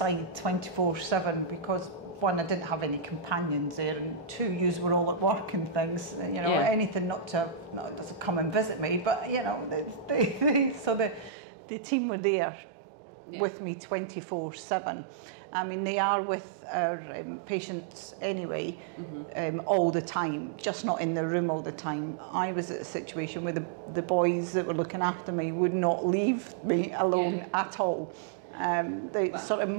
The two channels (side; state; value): left; drops out; at 11.3 s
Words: 24/7, because one, I didn't have any companions there, and two, yous were all at work and things, anything not to come and visit me, but so the team were there with me 24/7. I mean, they are with our patients anyway, all the time, just not in the room all the time. I was at a situation where the boys that were looking after me would not leave me alone at all. They sort of